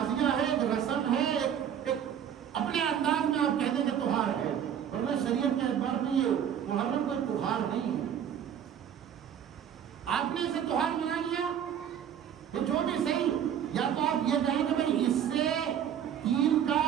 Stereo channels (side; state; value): left; quieter; 9.1 dB